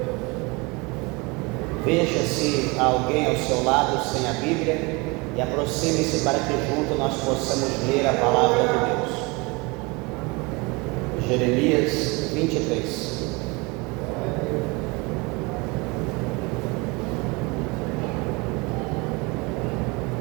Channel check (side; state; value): left; quieter; 26.7 dB